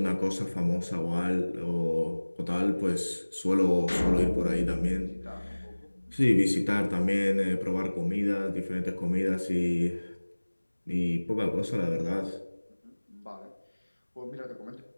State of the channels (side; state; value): both; inverted; correlation -1.00